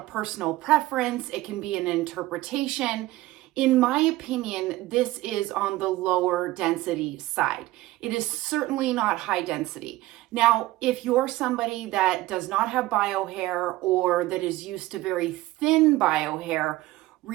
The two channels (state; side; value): quieter; left; 17.7 dB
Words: personal preference. It can be an interpretation. In my opinion, this is on the lower density side. It is certainly not high density. Now, if you're somebody that does not have bio hair or that is used to very thin bio hair,